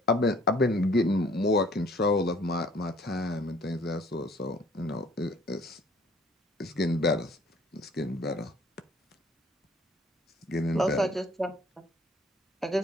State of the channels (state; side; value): normal; both; correlation 0.56